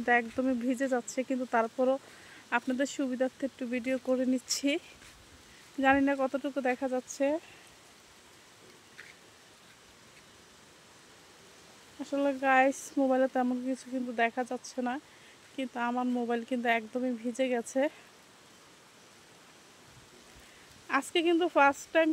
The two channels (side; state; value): both; identical; correlation 1.00